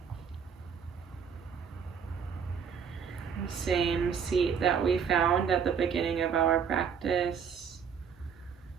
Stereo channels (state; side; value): quieter; left; 6.9 dB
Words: The same seat that we found at the beginning of our practice